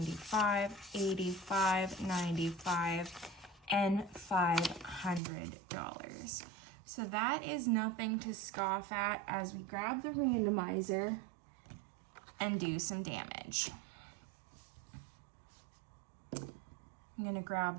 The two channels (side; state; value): left; drops out; at 5.2 s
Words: 85, 95, and $500. So that is nothing to scoff at as we grab the randomizer and do some damage. I'm gonna